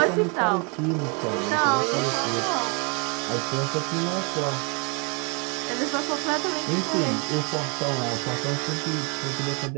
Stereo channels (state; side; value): quieter; left; 33.5 dB